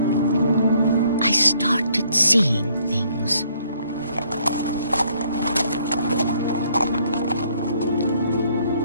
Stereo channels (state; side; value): inverted; both; correlation -0.65